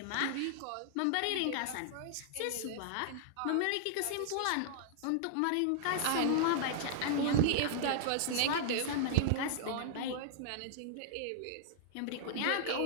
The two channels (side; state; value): both; different; correlation -0.01